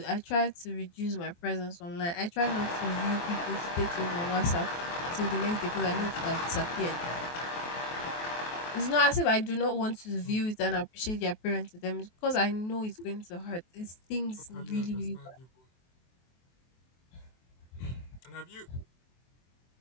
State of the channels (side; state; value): right; late; 23 ms